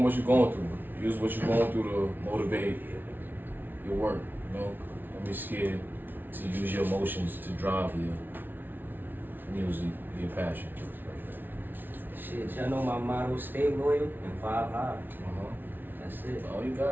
what you're going through. Use what you're going through to motivate your work. You know, don't be scared to use your emotions to drive your music, your passion. Shit, y'all know my motto: stay loyal and 5 high. That's it. Oh, you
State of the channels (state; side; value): late; left; 0.093 ms